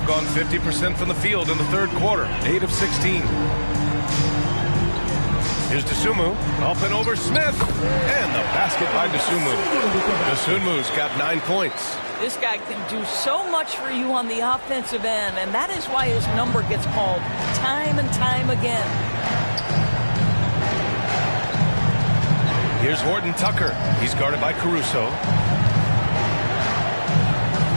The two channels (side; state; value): both; inverted; correlation -1.00